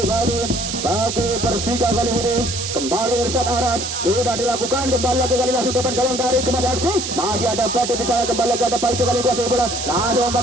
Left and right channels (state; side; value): noise; right; hiss, 5 dB below the sound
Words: bagi Persika Kaliburi. Kembali Irsyad Aras sudah dilakukan, kembali lagi kali langsung depan gawang dari Kemas FC. Masih ada Batu di sana, kembali lagi ada Paijo kali kuasai bola. Langsung